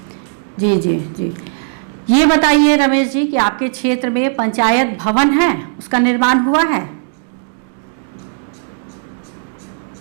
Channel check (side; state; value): left; silent; digital silence